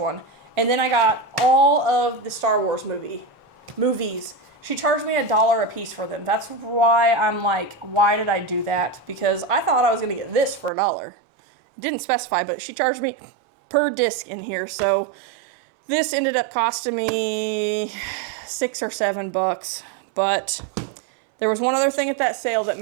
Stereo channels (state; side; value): drops out; left; at 10.7 s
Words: And then I got all of the Star Wars movies. She charged me $1 a piece for them. That's why I'm like, why did I do that? Because I thought I was going to get this for $1. Didn't specify, but she charged me per disc in here. So this ended up costing me $6 or $7. But there was one other thing at that sale that